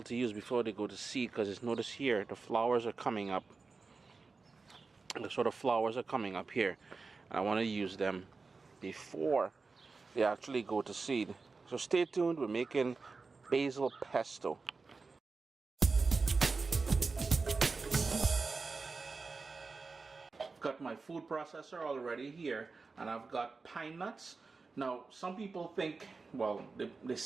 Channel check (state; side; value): quieter; left; 4.2 dB